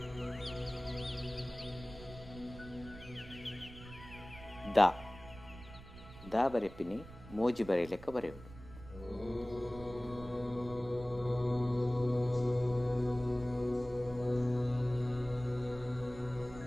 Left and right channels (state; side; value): noise; right; rumble, 16 dB below the sound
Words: ದ ದ ಬರೆಪಿನಿ ಮೋಜಿ ಬರೆಯಲೆಕ್ಕ ಬರೆಯುವುದು.